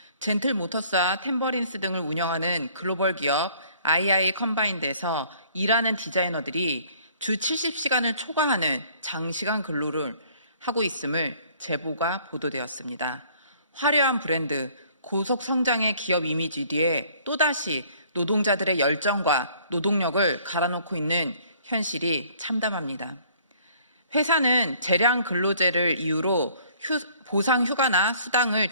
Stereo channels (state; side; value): inverted; both; correlation -0.58